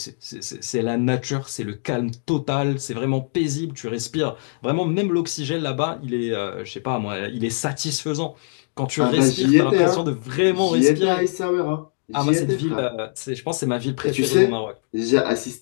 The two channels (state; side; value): silent; right; digital silence